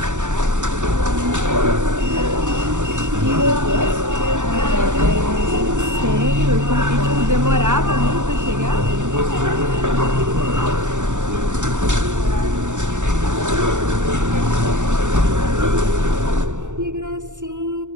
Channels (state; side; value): late; left; 0.85 ms